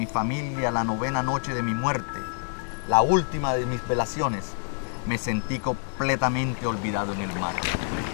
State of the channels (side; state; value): right; silent; 60 dB below the other